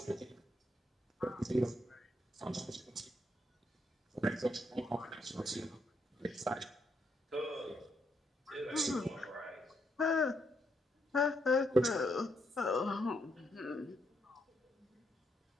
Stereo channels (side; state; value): both; normal; correlation 0.77